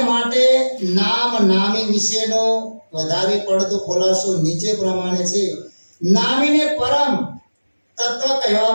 માટે નામ નામી વિશેનો વધારે પડતો ખુલાસો નીચે પ્રમાણે છે. નામીને પરમ તત્વ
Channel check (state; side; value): inverted; both; correlation -1.00